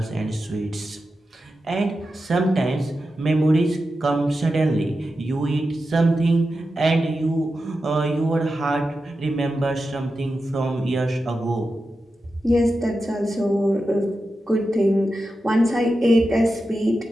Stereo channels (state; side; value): normal; both; correlation 0.91